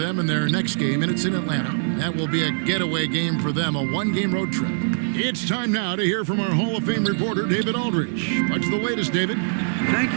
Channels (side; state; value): left; silent; 55 dB below the other